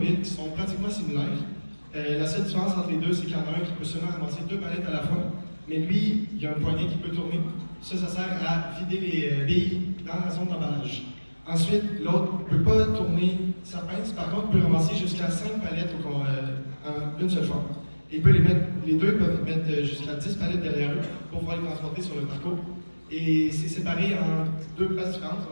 qui sont pratiquement similaires. La seule différence entre les deux, c'est qu'il y en a un qui peut seulement ramasser 2 palettes à la fois, mais lui, il y a un poignet qui peut tourner. Ça sert à vider les billes dans la zone d'emballage. Ensuite, l'autre ne peut pas tourner sa pince, par contre, il peut ramasser jusqu'à 5 palettes en une seule fois. Et les deux peuvent mettre jusqu'à 10 palettes derrière eux pour pouvoir les transporter sur le parcours. Et c'est séparé en 2 places différentes,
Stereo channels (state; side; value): inverted; both; correlation -1.00